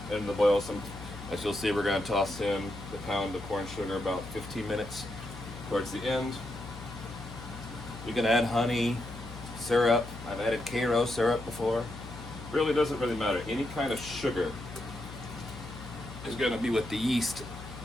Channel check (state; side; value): noise; left; hum, 12 dB below the sound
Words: end of the boil. As you'll see, we're going to toss in the pound of corn sugar about 15 minutes towards the end. We can add honey, syrup. I've added Karo syrup before. Really doesn't really matter. Any kind of sugar is going to be what the yeast